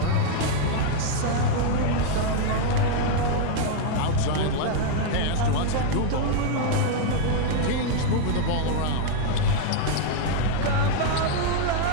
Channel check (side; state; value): both; different; correlation 0.00